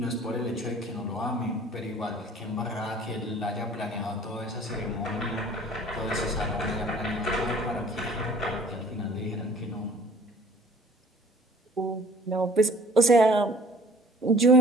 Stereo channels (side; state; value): both; normal; correlation 0.51